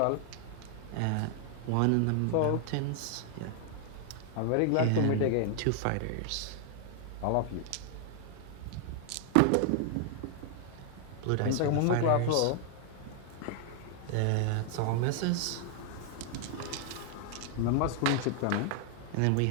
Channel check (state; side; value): different; both; correlation 0.00